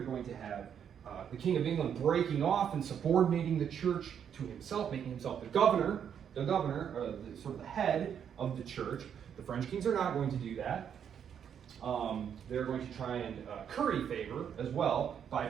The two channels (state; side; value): quieter; left; 8.3 dB